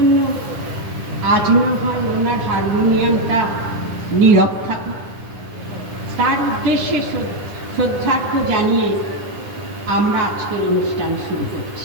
আজ না হয় ওনার হারমোনিয়ামটা নীরব থাকুক, তার উদ্দেশ্যে শ্রদ্ধার্থ জানিয়ে আমরা আজকের অনুষ্ঠান শুরু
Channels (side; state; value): left; late; 9.9 ms